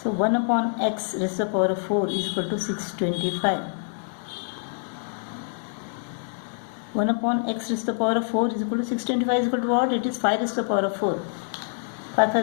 So 1 upon x raised to the power of 4 is equal to 625. 1 upon x raised to the power of 4 is equal to 625 is equal to what? It is 5 raised to the power of 4. 5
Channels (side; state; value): right; silent; digital silence